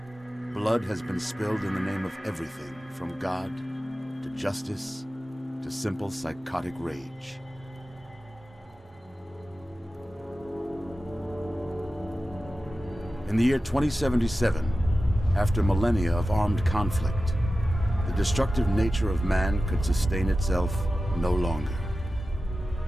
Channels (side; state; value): both; normal; correlation 0.94